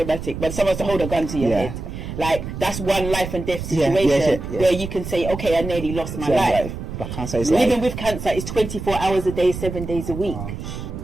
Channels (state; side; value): noise; right; rumble, 8 dB below the sound